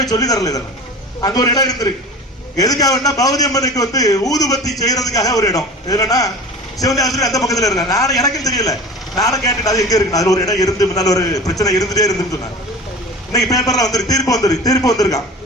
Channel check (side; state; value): both; normal; correlation 0.36